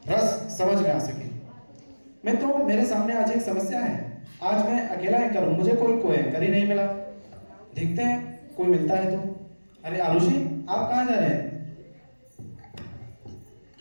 रस समझ में आ सके। मित्रों, मेरे सामने आज एक समस्या है। आज मैं अकेला एंकर हूँ, मुझे कोई एंकर ही नहीं मिला। देखते हैं कोई मिलता है तो। अरे आरुषि, आप कहाँ जा रहे हैं?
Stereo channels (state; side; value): inverted; both; correlation -1.00